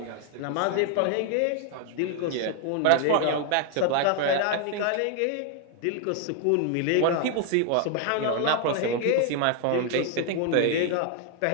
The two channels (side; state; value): both; different; correlation 0.00